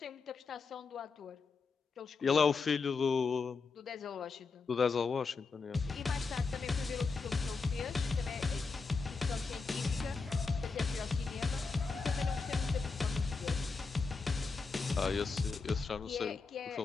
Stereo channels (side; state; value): right; quieter; 4.5 dB